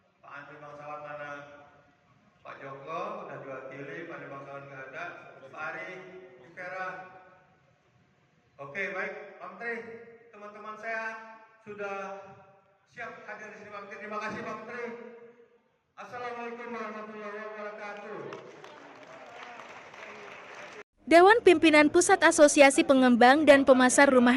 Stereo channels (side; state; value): both; identical; correlation 1.00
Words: Pak Andri Bangsawan mana? Pak Joko udah diwakili, Pak Andri Bangsawan nggak ada. Pak Ari, Vera. Oke, baik, Pak Menteri, teman-teman saya sudah siap hadir di sini Pak Menteri. Terima kasih Pak Menteri. Assalamualaikum warahmatullahi wabarakatuh. Dewan Pimpinan Pusat Asosiasi Pengembang dan Pemasar